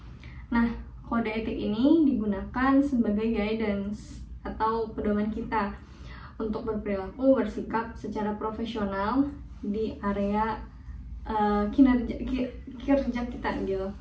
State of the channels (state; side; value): identical; both; correlation 1.00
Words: Nah, kode etik ini digunakan sebagai guidance atau pedoman kita untuk berperilaku, bersikap secara profesional di area kerja kita gitu.